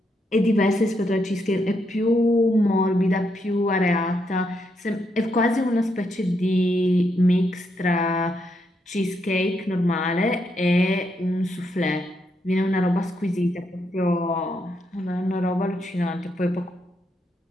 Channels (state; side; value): normal; both; correlation 0.79